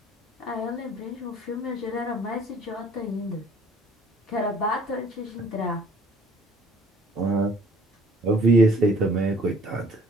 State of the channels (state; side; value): normal; both; correlation 0.55